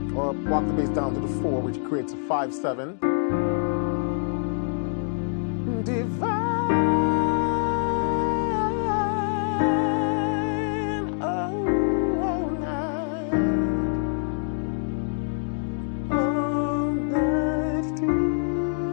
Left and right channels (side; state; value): right; silent; digital silence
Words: Or walk the bass down to the 4, which creates a 5-7. divine, all night divine.